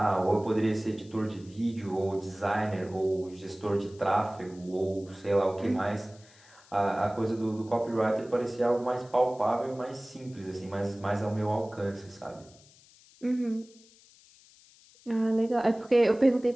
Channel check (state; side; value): noise; left; hiss, 26 dB below the sound